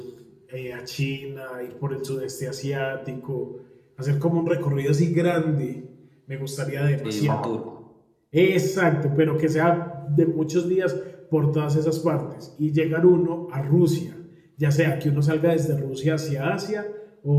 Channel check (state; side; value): identical; both; correlation 1.00